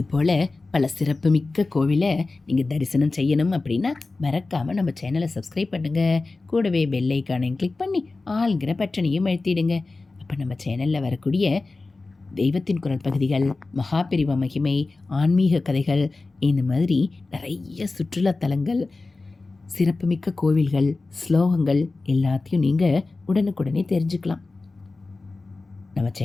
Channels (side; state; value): right; quieter; 3.5 dB